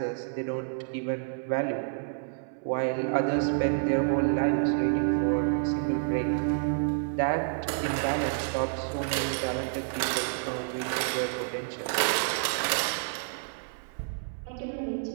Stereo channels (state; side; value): silent; left; 59 dB below the other